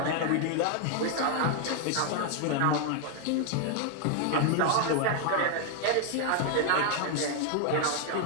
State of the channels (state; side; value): different; both; correlation 0.00